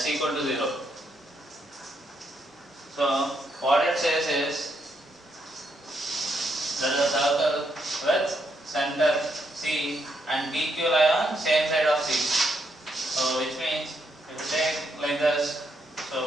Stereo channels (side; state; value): both; normal; correlation 0.77